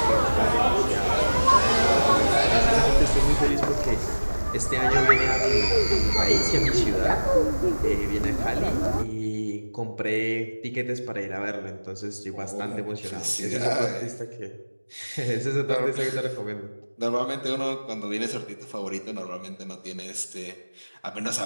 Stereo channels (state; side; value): inverted; both; correlation -1.00